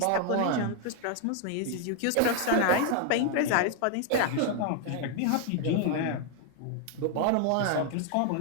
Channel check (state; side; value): different; both; correlation 0.00